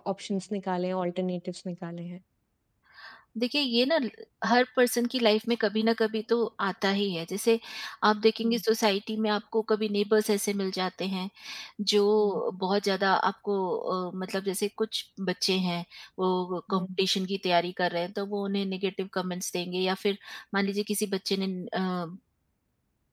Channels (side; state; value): both; identical; correlation 1.00